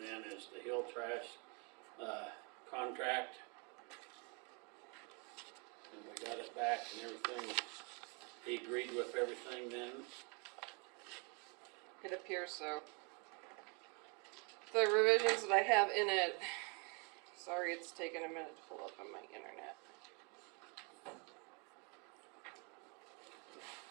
then is the hill trash, contract. And we got it back and everything. He agreed with everything then? It appears so. The revisions that I have in it, sorry it's taken a minute to pull up on my internet.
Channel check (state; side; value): quieter; left; 33.7 dB